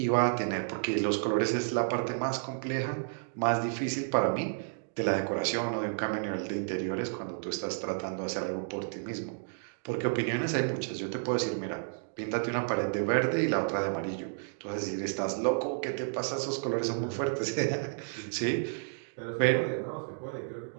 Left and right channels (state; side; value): silent; left; digital silence